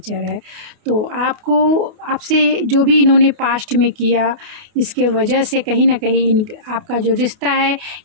है। तो आपसे जो भी इन्होंने पास्ट में किया, इसके वजह से कहीं ना कहीं आपका जो रिश्ता है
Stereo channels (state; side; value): late; left; 28 ms